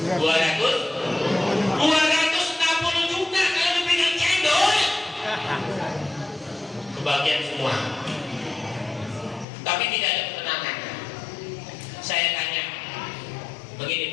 260 juta kalau dipegang cendol. Kebagian semua. Tapi tidak ada ketenangan. Saya tanya, begini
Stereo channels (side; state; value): right; drops out; at 9.5 s